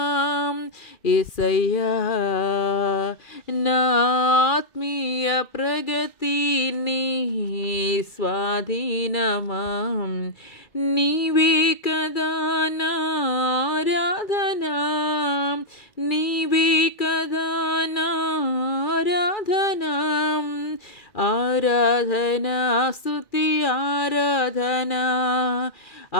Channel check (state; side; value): late; right; 2.4 ms